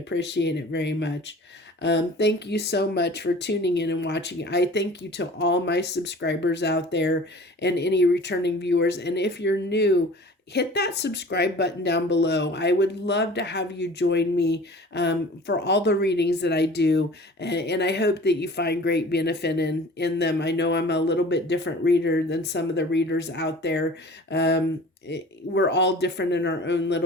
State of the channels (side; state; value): both; normal; correlation 0.44